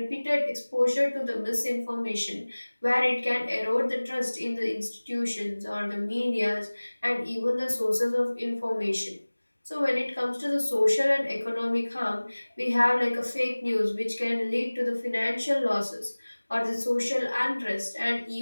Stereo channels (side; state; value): both; inverted; correlation -1.00